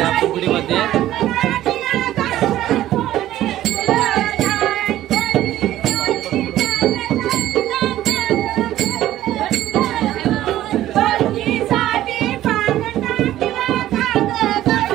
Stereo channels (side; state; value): left; quieter; 13.7 dB